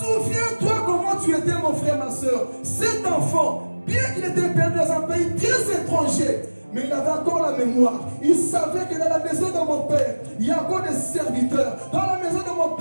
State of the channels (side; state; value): both; inverted; correlation -1.00